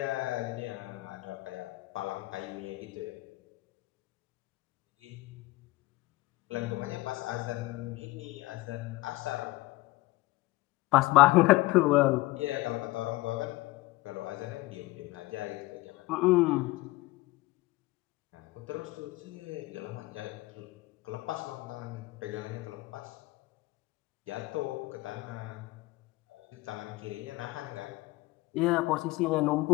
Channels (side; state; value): right; quieter; 20.4 dB